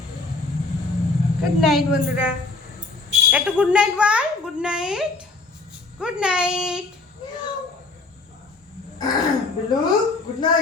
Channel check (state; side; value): quieter; right; 3.6 dB